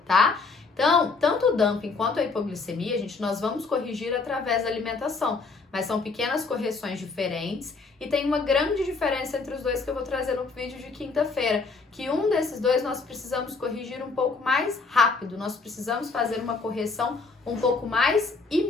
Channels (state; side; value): quieter; right; 4.2 dB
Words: tá? Então, tanto o dumping quanto a hipoglicemia, gente, nós vamos corrigir através da alimentação, mas são pequenas correções diferentes e tem uma grande diferença entre os dois que eu vou trazer no vídeo de quinta-feira, que um desses dois nós precisamos corrigir um pouco mais rápido, nós precisamos fazer uma correção um pouco mais